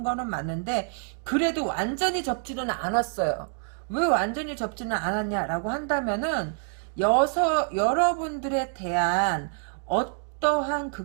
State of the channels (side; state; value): left; silent; 58 dB below the other